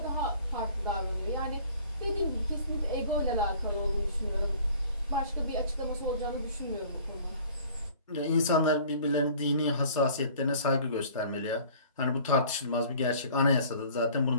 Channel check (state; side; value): inverted; both; correlation -0.50